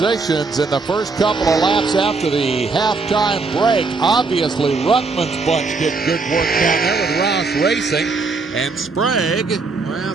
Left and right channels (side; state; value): left; quieter; 4.1 dB